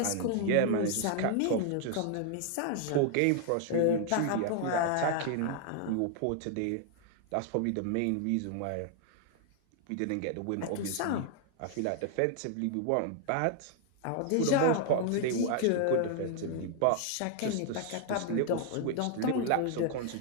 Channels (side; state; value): both; different; correlation 0.00